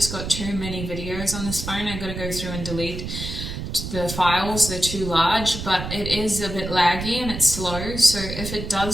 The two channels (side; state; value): right; noise; rumble, 7 dB below the sound